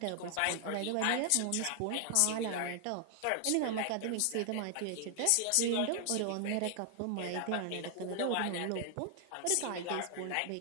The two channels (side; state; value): both; different; correlation 0.00